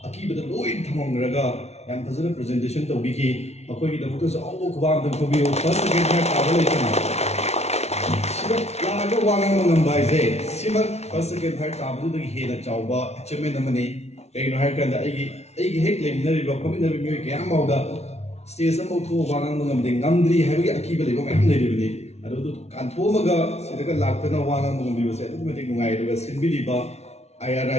aki bada loi thamang raga yan fazana presentation to biki makoi ki da mutu sa awu khwa da ko bi first second third tabal itna sima la ga wangan mangam bai se sima first second third tabal da he da chawba achievement amani kai no har kan da ai hek lem na ri ba komi na mi ke am da stage am thu wangan mangam ding ngamdri ha bi aki ba le ba mai nei ri ni adu kan tho maga sidaka laktana wangan mangam bi ba se adu metik ngai ru ga sinbi di ba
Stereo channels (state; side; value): late; right; 0.31 ms